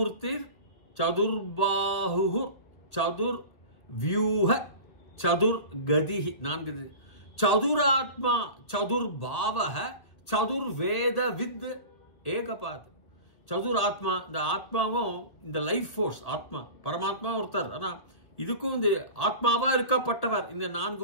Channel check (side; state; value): right; late; 2.0 ms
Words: சதுர்பாஹு சதுர்வியூஹ சதுர்கதிஹி 4. சதுராத்மா சதுர்பாவஹ சதுர்வேதவித் ஏகபாத். சதுராத்மா இந்த ஆத்மாவும் இந்த லைஃப் ஃபோர்ஸ் ஆத்மா பரமாத்மா ஒருத்தர். ஆனால் இதுக்கும் இந்த ஆத்மாவா இருக்கப்பட்டவர் இந்த